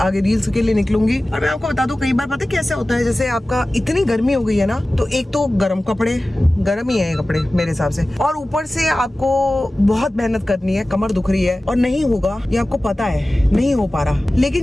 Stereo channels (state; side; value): normal; both; correlation 0.96